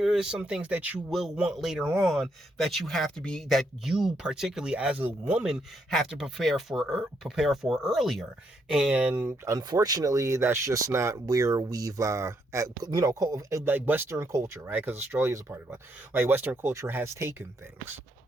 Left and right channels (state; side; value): normal; both; correlation 0.75